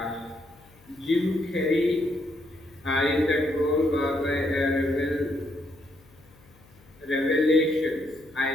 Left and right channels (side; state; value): left; noise; hum, 28 dB below the sound